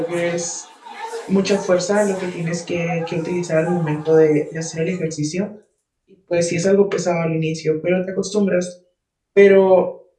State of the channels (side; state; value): both; identical; correlation 1.00